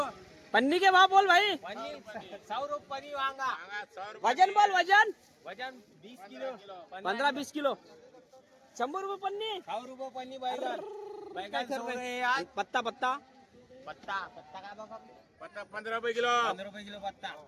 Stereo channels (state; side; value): identical; both; correlation 1.00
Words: पन्नी के भाव बोल भाई. 100 रुपये वांगा. वजन बोल वजन. वजन 20 किलो. 15-20 किलो. 100 रुपये पन्नी. 100 रुपये पन्नी बैगन. बैगन 100 रुपये. पत्ता पत्ता पत्ता पत्ता काय बघा. पत्ता 15 रुपये किलो. 15 रुपये किलो पत्ता.